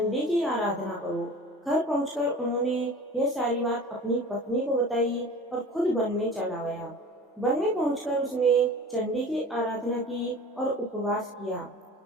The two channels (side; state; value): both; normal; correlation 0.39